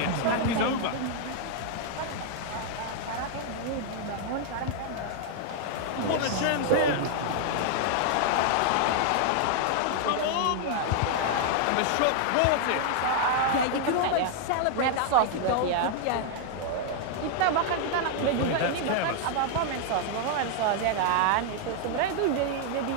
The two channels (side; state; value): both; different; correlation 0.00